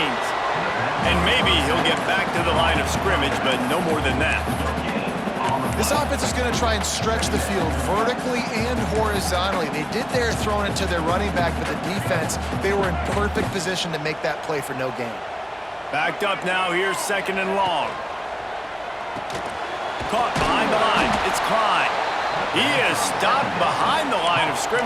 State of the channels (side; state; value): both; identical; correlation 1.00